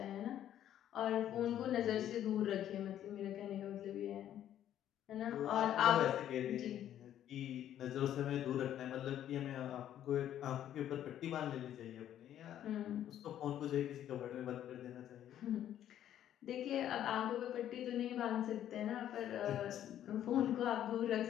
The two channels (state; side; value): quieter; right; 11.1 dB